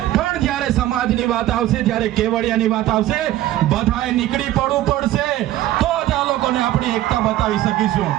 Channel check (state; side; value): quieter; left; 14.4 dB